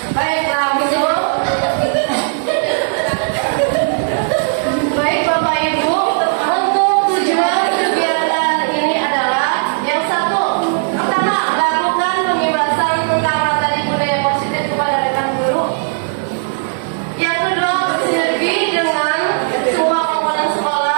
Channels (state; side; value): silent; left; digital silence